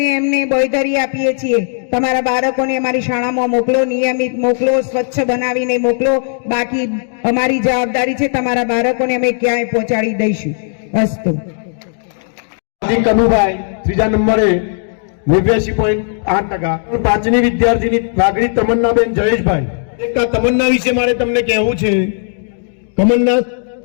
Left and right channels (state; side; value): silent; right; digital silence